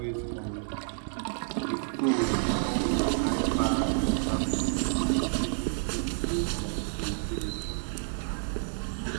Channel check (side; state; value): left; silent; 57 dB below the other